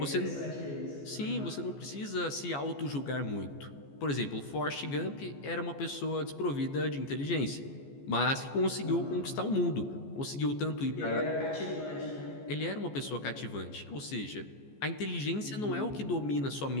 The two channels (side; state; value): right; late; 14 ms